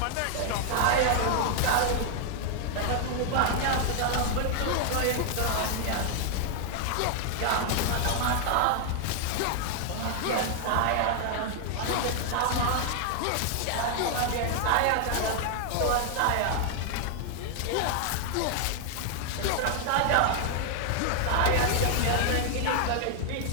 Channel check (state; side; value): different; both; correlation 0.00